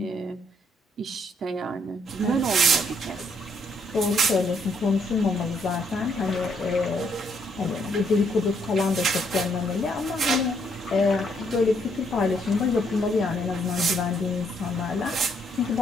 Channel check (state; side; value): normal; both; correlation 0.71